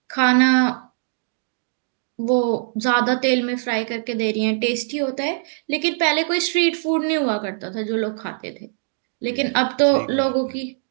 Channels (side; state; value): left; silent; digital silence